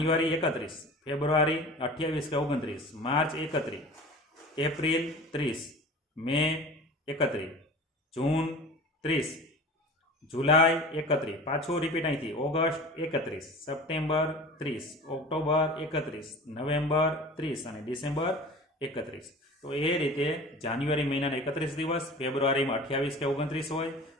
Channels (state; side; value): normal; both; correlation 0.38